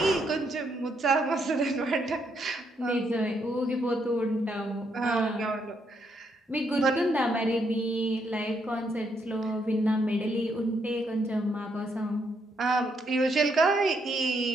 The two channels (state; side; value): normal; both; correlation 0.76